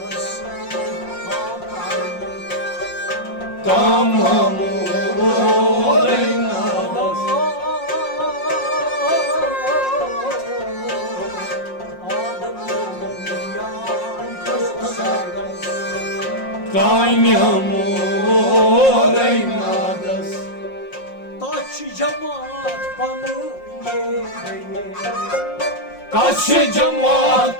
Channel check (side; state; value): right; late; 5.6 ms